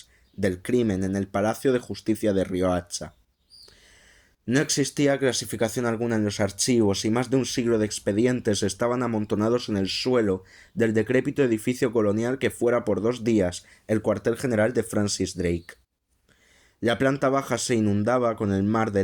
del crimen en el Palacio de Justicia de Riohacha. No existía clasificación alguna en los archivos y más de un siglo de expedientes estaban amontonados en el suelo del decrépito edificio colonial que fuera por 2 días el cuartel general de Francis Drake. La planta baja se inundaba con el mar de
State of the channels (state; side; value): identical; both; correlation 1.00